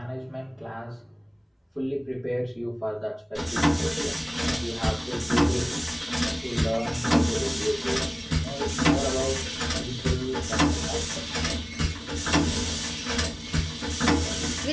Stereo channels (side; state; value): both; identical; correlation 1.00